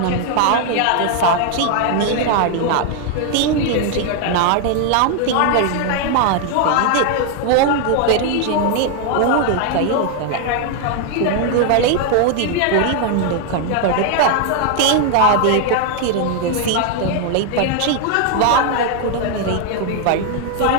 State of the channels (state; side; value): different; both; correlation 0.00